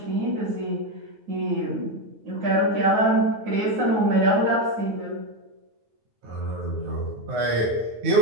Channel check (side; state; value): left; late; 9.4 ms